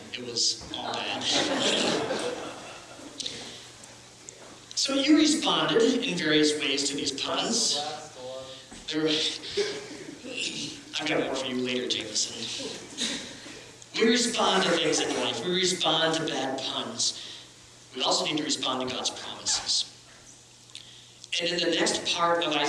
It was all bad. So you responded in various ways to these puns. I've got more for you later, Jameson. We respond to things in life. We respond to bad puns. We also need to respond to God's promises. And in the next part of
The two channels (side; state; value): both; identical; correlation 1.00